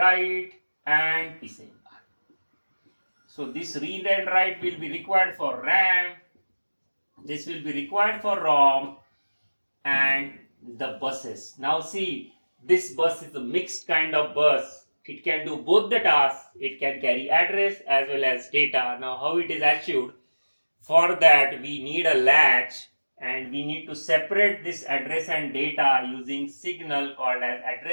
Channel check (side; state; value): both; inverted; correlation -1.00